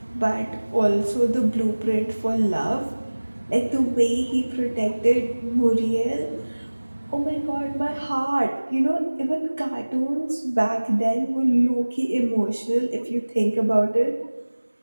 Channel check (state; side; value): inverted; both; correlation -1.00